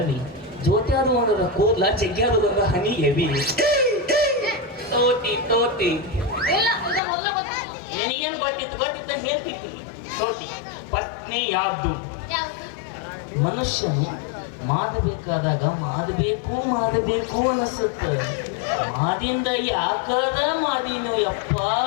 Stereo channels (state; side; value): drops out; right; at 7.0 s